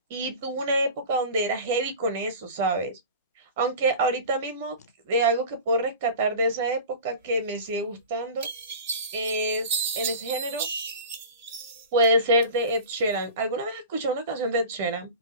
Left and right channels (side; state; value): both; inverted; correlation -0.35